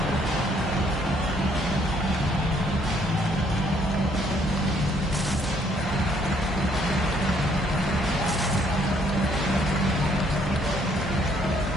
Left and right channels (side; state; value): both; normal; correlation 0.66